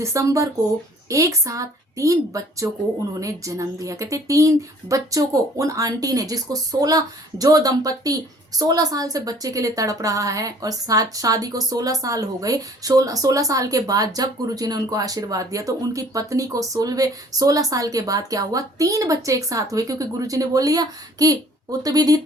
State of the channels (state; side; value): normal; both; correlation 0.55